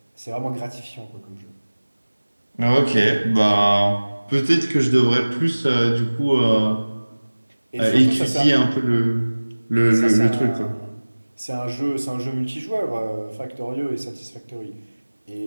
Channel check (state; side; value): inverted; both; correlation -1.00